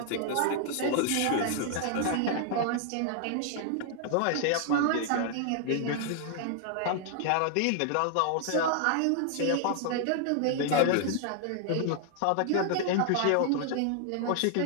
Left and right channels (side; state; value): both; different; correlation 0.00